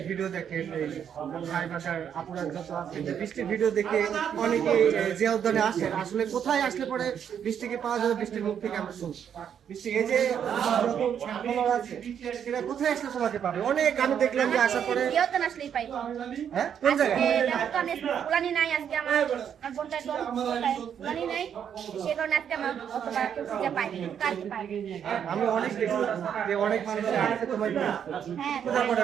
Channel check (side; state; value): left; quieter; 8.5 dB